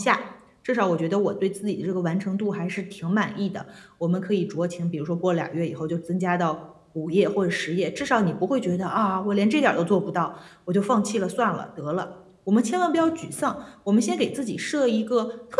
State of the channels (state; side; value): identical; both; correlation 1.00